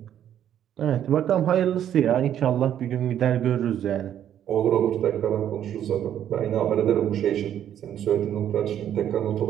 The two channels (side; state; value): left; quieter; 10.3 dB